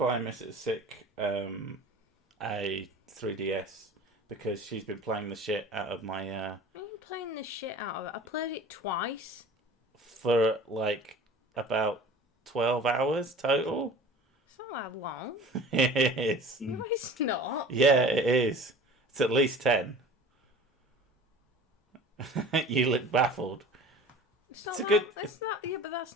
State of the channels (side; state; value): both; normal; correlation 0.42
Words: Mrs. Sick a 3DS because she's been playing the shit out of my. I'm playing the shit out of it. I played it twice. For like about 12 hours total. It's not that long. It is. No, it's not. Yeah, it is. It's at least 10. You look baffled. It's a good. It's not. Yeah, but that's